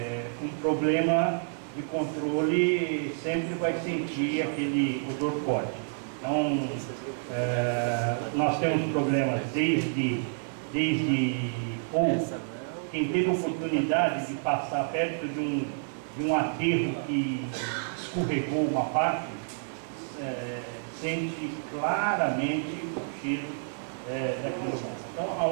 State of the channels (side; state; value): left; silent; 59 dB below the other